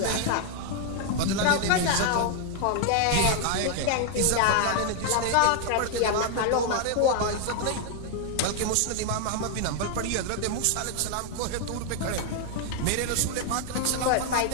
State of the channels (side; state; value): both; different; correlation 0.00